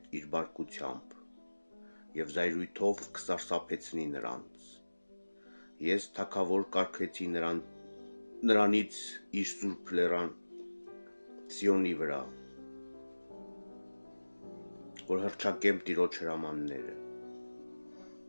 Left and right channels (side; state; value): both; inverted; correlation -1.00